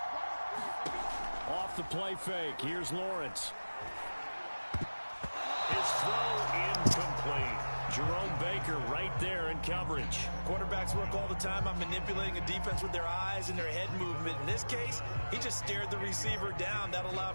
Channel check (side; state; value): both; inverted; correlation -1.00